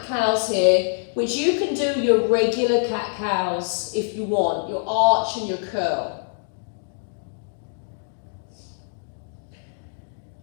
here, which you can do your regular cat-cows if you want, your arch and your curl.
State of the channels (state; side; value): silent; right; digital silence